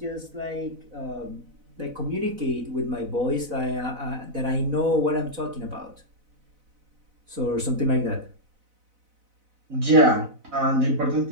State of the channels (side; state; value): left; late; 4.0 ms